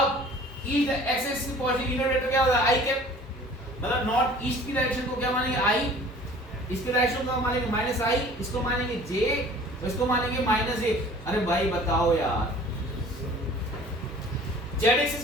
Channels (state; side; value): normal; both; correlation 0.48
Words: ईस्ट एक्सिस की पॉजिटिव यूनिट वेक्टर क्या होगा? आई कैप। मतलब नॉर्थ ईस्ट की डायरेक्शन को क्या मानेंगे? आई। इसकी डायरेक्शन को मानेंगे माइनस आई, इसको मानेंगे जे, इसको मानेंगे माइनस ए। अरे भाई बताओ यार, जेड